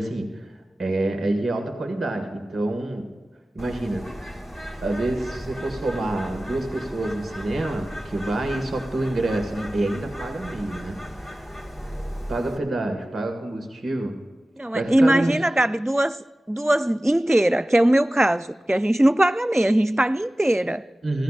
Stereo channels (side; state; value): both; normal; correlation 0.96